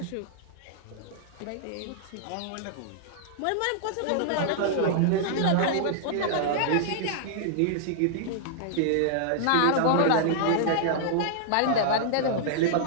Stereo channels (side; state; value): both; different; correlation -0.01